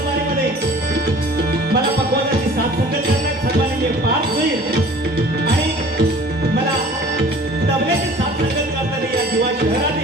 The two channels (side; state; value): both; normal; correlation 0.47